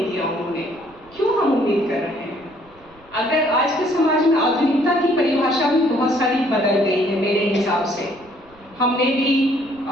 दिया उन्होंने, क्यों हम उम्मीद कर रहे हैं। अगर आज के समाज में आधुनिकता की परिभाषा भी बहुत सारी बदल गई है मेरे हिसाब से। हमने भी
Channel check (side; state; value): right; noise; rumble, 28 dB below the sound